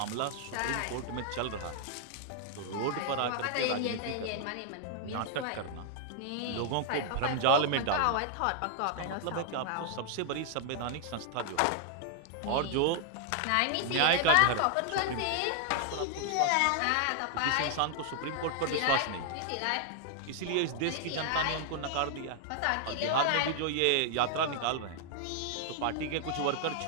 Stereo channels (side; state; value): both; different; correlation 0.00